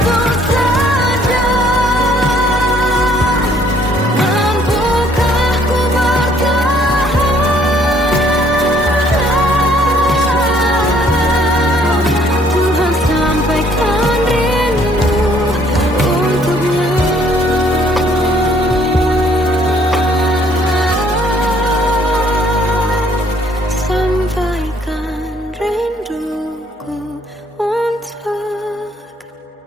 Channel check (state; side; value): normal; both; correlation 0.63